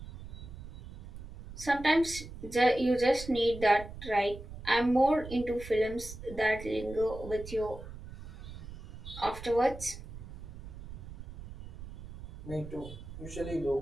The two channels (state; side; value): noise; right; rumble, 13 dB below the sound